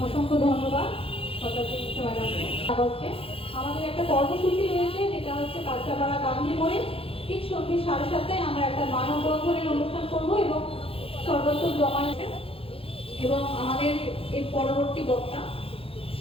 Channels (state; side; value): late; right; 0.27 ms